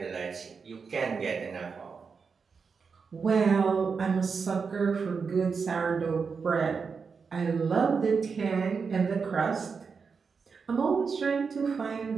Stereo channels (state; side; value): quieter; left; 5.4 dB